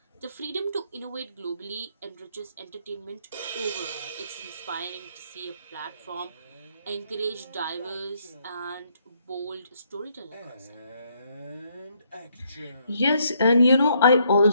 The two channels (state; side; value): inverted; both; correlation -0.71